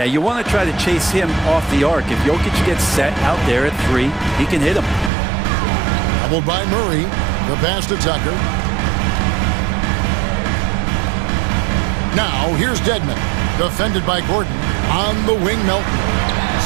you want to try to chase him off the arc. If Jokic gets set out there at 3, he can hit him. Doubled by Murray. The pass to Tucker. Now, here's Dedmon. Defended by Gordon. On the wing, Melton.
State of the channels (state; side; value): drops out; left; at 5.1 s